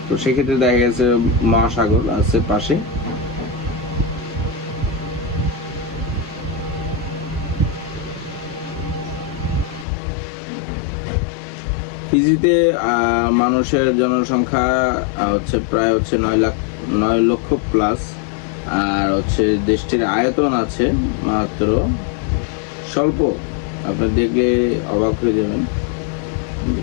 তো সেক্ষেত্রে দেখা গেছে মহাসাগর আছে পাশে। ফিজিতে মানুষের জনসংখ্যা হচ্ছে প্রায় হচ্ছে 9 লক্ষ প্লাস। আর হচ্ছে দেশটির আয়তন আছে মাত্র স্বল্প, আপনি দেখলে অবাক হয়ে যাবেন যে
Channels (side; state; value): right; drops out; at 9.9 s